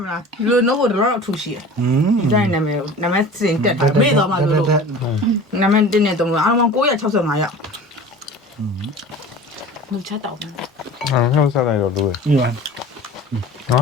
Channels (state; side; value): normal; both; correlation 0.40